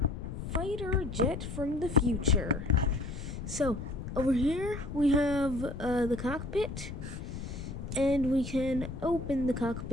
fighter jet from the future. So, over here we have the cockpit. And we can open the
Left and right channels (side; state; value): left; noise; rumble, 8 dB below the sound